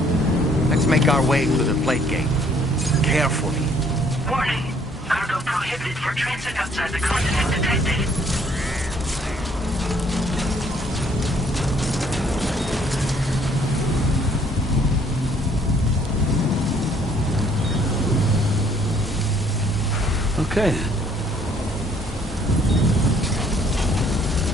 Let's make our way to the plate gate. Carefully. Warning. Cargo prohibited for transit outside the continent detected. Okay.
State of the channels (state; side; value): normal; both; correlation 0.62